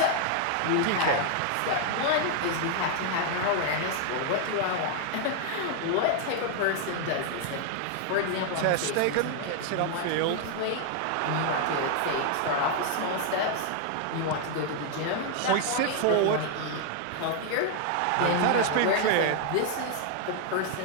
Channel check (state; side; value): different; both; correlation 0.00